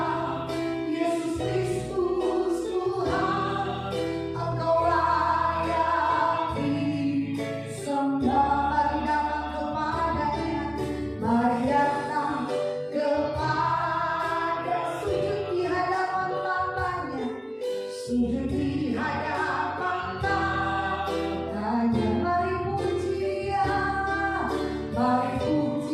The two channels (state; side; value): identical; both; correlation 1.00